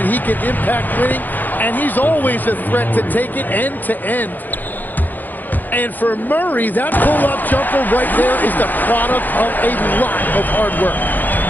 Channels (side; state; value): right; late; 0.086 ms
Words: he can impact winning, and he's always a threat to take it end to end. And for Murray, that pull-up jumper right there is the product of a lot of hard work.